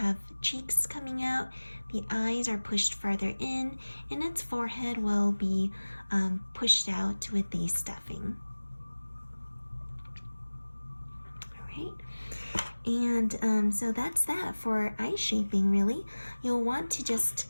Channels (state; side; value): inverted; both; correlation -1.00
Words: cheeks coming out, the eyes are pushed farther in, and its forehead will be pushed out with the stuffing. All right, and so that's that for eye shaping, really. You'll want to just,